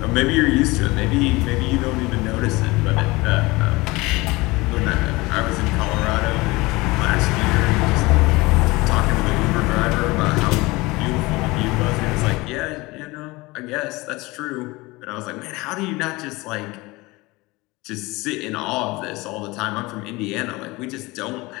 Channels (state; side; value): quieter; right; 22.4 dB